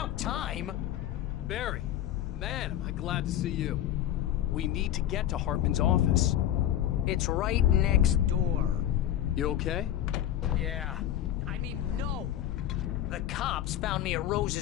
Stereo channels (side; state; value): right; quieter; 11.7 dB